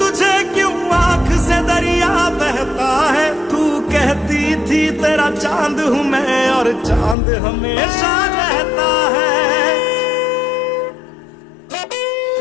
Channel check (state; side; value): drops out; right; at 7.2 s